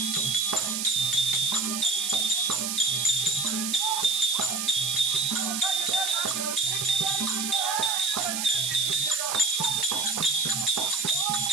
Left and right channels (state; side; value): noise; right; hiss, 1 dB below the sound